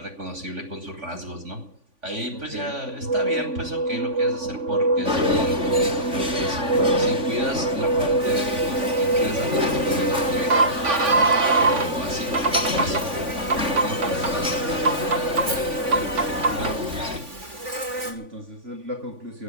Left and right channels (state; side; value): late; left; 3.5 ms